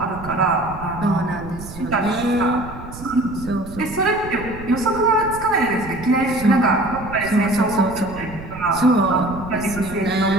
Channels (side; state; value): right; noise; rumble, 13 dB below the sound